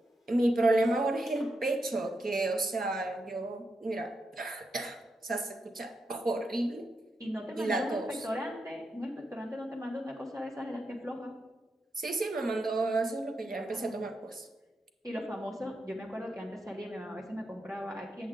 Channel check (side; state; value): both; normal; correlation 0.85